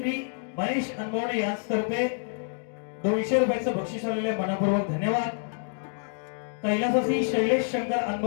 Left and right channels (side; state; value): right; silent; 60 dB below the other